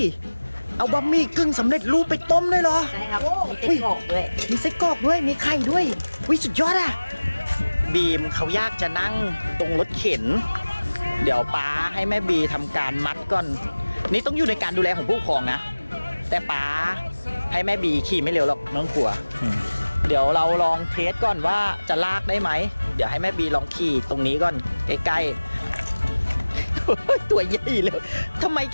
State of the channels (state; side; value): inverted; both; correlation -1.00